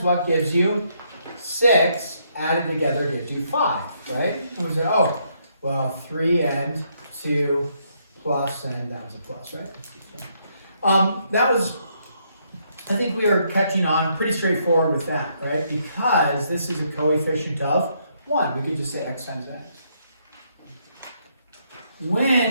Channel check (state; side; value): inverted; both; correlation -0.73